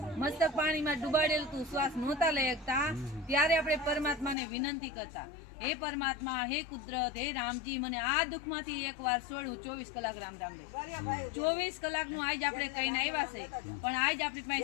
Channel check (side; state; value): right; drops out; at 4.4 s